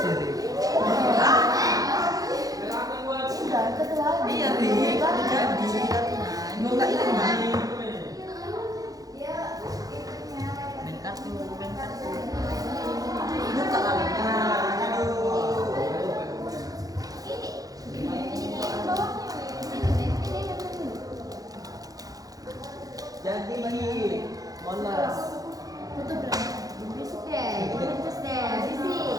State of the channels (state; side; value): late; left; 0.17 ms